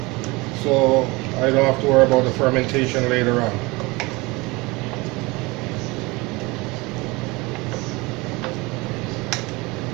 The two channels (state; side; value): quieter; left; 24.2 dB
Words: so I don't have to worry about the fermentation later on.